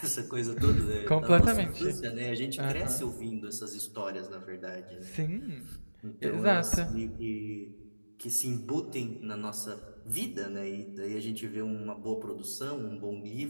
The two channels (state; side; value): inverted; both; correlation -1.00